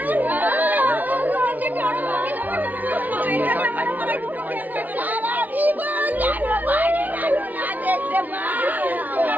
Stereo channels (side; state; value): left; late; 0.078 ms